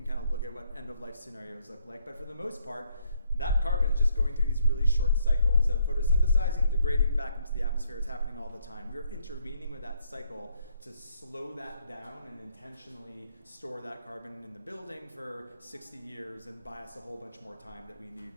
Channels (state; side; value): inverted; both; correlation -0.71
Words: kind of look at what end of life scenarios look like, but for the most part, that carbon is just going through these really short cycles of photosynthesizing, degrading back into the atmosphere. It's happening all the time. We're intervening with that cycle to slow that down and intentionally store that carbon in the building for 60 years and buy us a whole bunch more time that we need